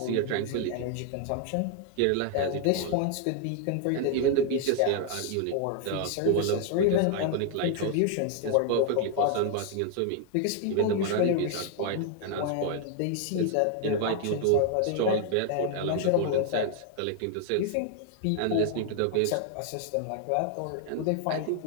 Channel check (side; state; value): both; different; correlation 0.00